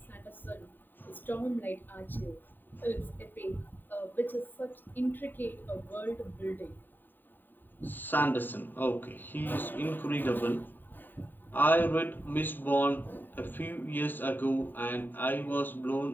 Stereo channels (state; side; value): late; right; 0.092 ms